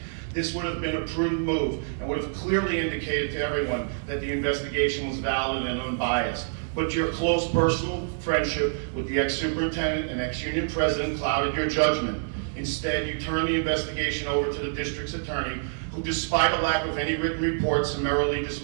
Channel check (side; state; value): left; silent; digital silence